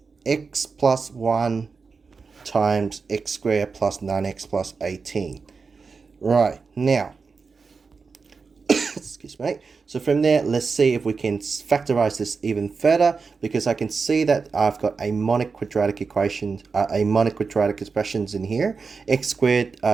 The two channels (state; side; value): quieter; left; 4.9 dB